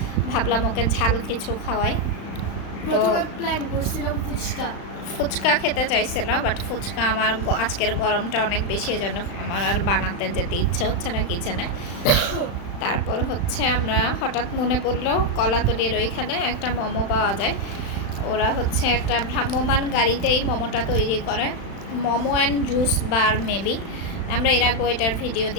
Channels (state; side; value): late; right; 35 ms